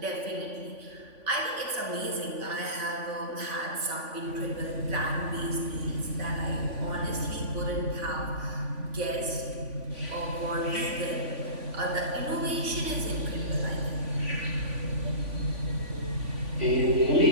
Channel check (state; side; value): late; left; 3.5 ms